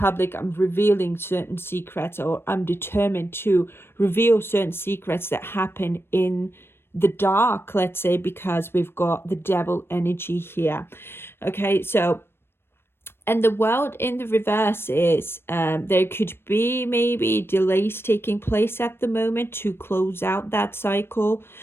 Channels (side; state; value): right; late; 0.11 ms